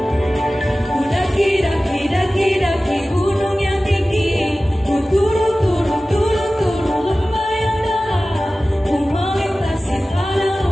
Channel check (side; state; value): both; normal; correlation 0.96